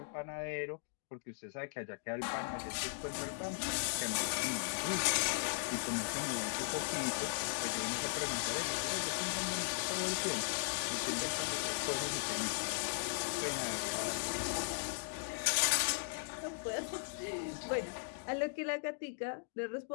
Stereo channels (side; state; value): right; silent; digital silence